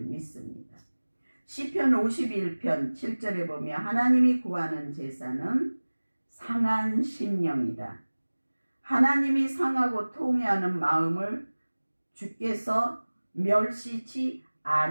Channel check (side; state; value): both; inverted; correlation -1.00